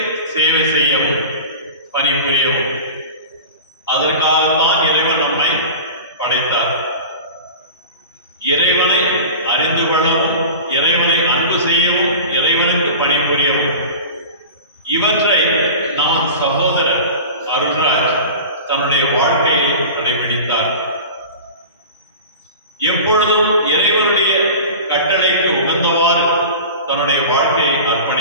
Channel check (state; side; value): inverted; both; correlation -0.33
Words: சேவை செய்யவும், பணிபுரியவும். அதற்காகத்தான் இறைவன் நம்மை படைத்தார். இறைவனை அறிந்து கொள்ளவும், இறைவனை அன்பு செய்யவும், இறைவனுக்கு பணிபுரியவும். இவற்றை நம் சகோதரர் அருள்ராஜ் தன்னுடைய வாழ்க்கையில் கடைபிடித்தார். எப்பொழுதும் இறைவனுடைய கட்டளைக்கு உகந்தவாறு தன்னுடைய வாழ்க்கையை